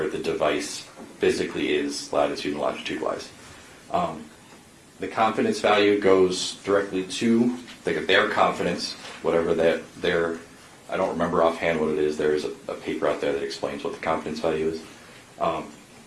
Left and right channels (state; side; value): identical; both; correlation 1.00